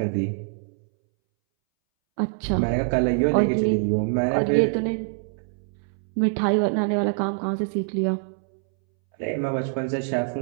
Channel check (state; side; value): silent; left; 62 dB below the other